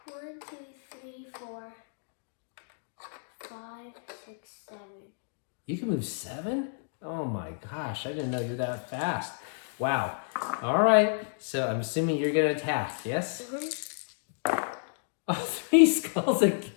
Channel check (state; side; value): silent; right; digital silence